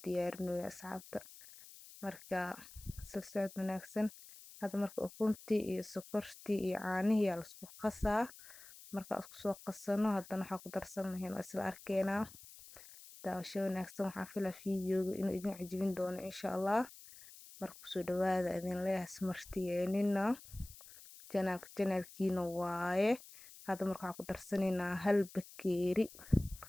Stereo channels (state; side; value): noise; left; hiss, 18 dB below the sound